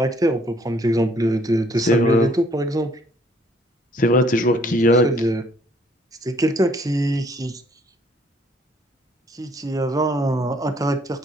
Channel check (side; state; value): both; normal; correlation 0.63